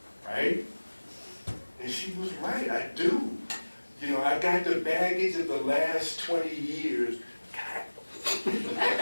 Right? And she was right, I do. You know, I got the baggage of the last 20 years.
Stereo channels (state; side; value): inverted; both; correlation -1.00